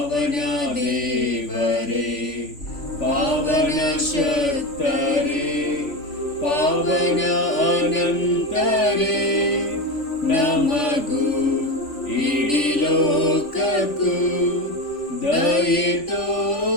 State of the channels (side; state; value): right; late; 3.5 ms